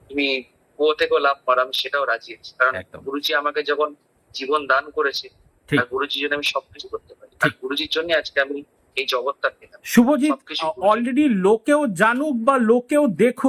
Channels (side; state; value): both; identical; correlation 1.00